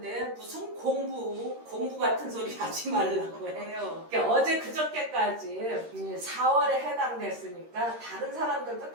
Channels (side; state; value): left; late; 13 ms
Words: 무슨 공부 같은 소리 하지 말라고 해요. 그러니까 어제 그저께까지 4월에 해당됐으니까 다른 사람들도